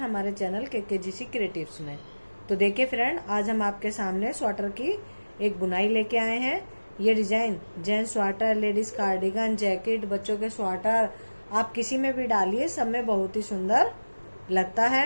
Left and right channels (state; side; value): inverted; both; correlation -1.00